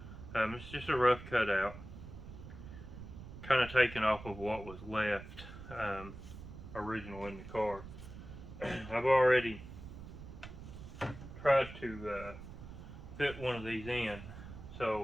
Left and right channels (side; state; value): right; noise; rumble, 13 dB below the sound